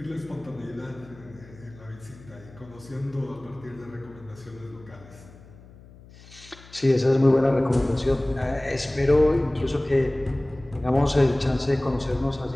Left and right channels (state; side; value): noise; left; hum, 22 dB below the sound